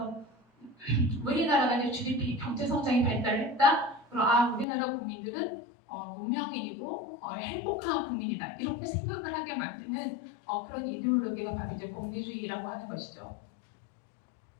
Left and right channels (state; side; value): drops out; right; at 4.7 s